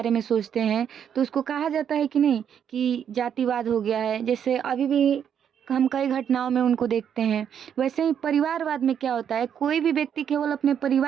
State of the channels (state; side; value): quieter; left; 8.5 dB